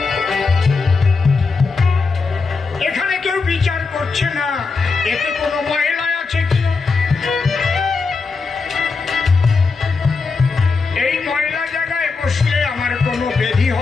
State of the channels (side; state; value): right; quieter; 4.5 dB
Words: এখানে কেউ বিচার করছে না এতে কোনো মহিলা আছে কি। এই মহিলা জায়গায় বসলে আমার কোনো ব্যাধি